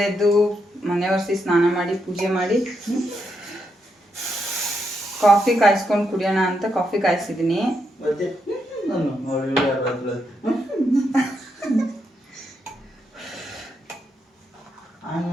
ಎದ್ದು ಮನೆ ಒರೆಸಿ ಸ್ನಾನ ಮಾಡಿ ಪೂಜೆ ಮಾಡಿ ಕಾಫಿ ಕಾಯಿಸ್ಕೊಂಡು ಕುಡಿಯೋಣ ಅಂತ ಕಾಫಿ ಕಾಯಿಸಿದ್ದೀನಿ.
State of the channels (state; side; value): normal; both; correlation 0.81